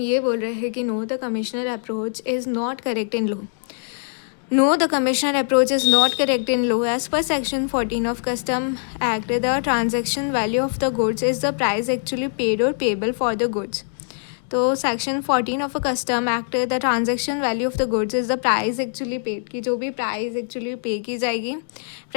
ये बोल रहे हैं कि no, the commissioner approach is not correct in law. No, the commissioner approach is not correct in law. As per section 14 of Custom Act, the transaction value of the goods is the price actually paid or payable for the goods. तो section 14 of custom act, the transaction value of the goods is the price actually paid, की जो भी प्राइस एक्चुअली पे की जाएगी,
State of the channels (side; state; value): right; silent; digital silence